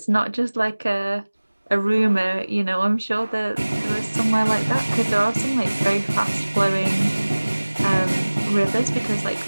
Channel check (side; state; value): both; inverted; correlation -1.00